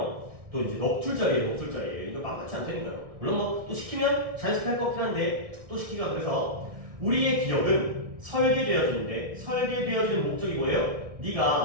또 이제 넉줄짜리예요. 이거 만만치 않다니까요. 물론 뭐 또 시키면 자연스럽게 할 것 같긴 한데 또 시키기가 그래서 우리의 기억은 설계되어지는데 설계되어지는 목적이 뭐예요?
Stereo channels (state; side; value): late; left; 1.5 ms